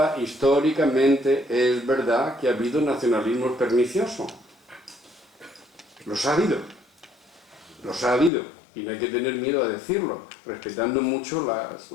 históricamente es verdad que ha habido nacionalismos perniciosos. Los ha habido, y no hay que tener miedo a decirlo, respetando mucho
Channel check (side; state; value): right; drops out; at 8.3 s